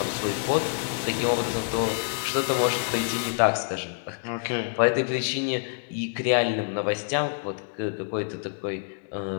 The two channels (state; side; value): silent; right; digital silence